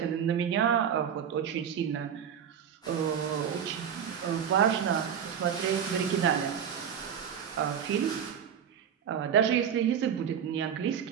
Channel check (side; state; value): left; quieter; 8.3 dB